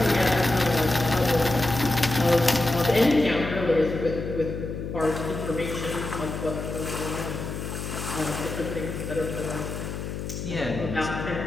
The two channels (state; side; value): noise; left; hum, 6 dB below the sound